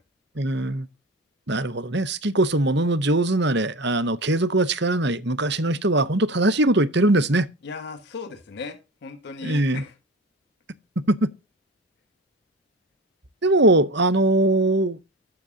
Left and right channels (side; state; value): both; normal; correlation 0.32